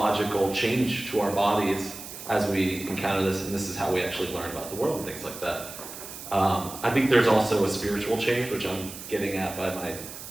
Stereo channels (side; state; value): right; noise; hiss, 12 dB below the sound